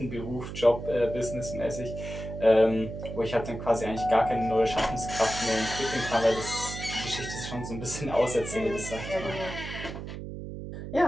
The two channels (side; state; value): right; noise; hum, 8 dB below the sound